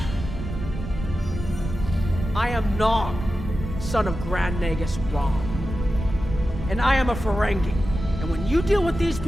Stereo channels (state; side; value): noise; right; rumble, 7 dB below the sound